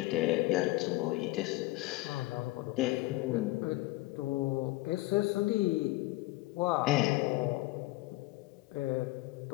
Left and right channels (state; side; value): quieter; right; 19.9 dB